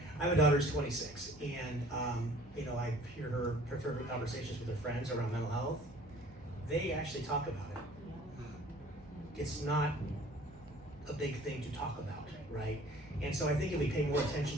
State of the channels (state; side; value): noise; right; hum, 22 dB below the sound